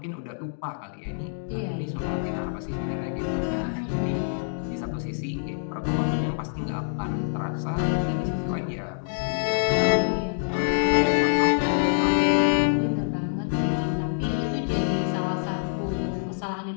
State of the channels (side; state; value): right; silent; digital silence